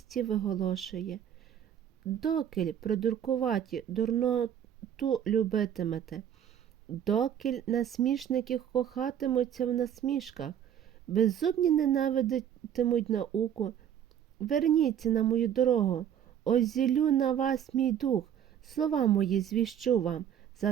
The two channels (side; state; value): left; quieter; 9.6 dB